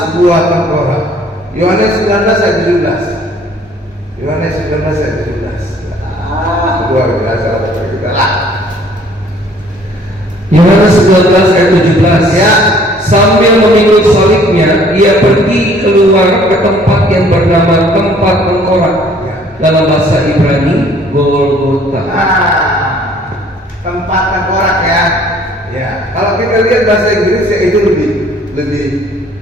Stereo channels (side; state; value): both; normal; correlation 0.57